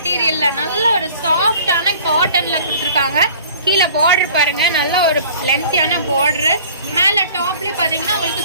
நல்ல ஒரு சாஃப்டான காட்டனில் கொடுத்துருக்காங்க. கீழே பார்டர் பாருங்கள், நல்ல ஒரு லென்த்தியான பார்டரு. மேலே டாப்லேயும் பார்த்தீங்கன்னா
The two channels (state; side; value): inverted; both; correlation -0.48